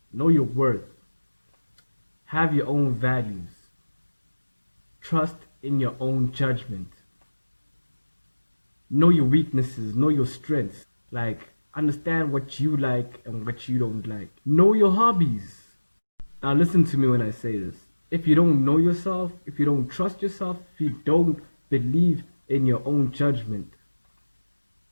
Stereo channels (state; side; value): inverted; both; correlation -1.00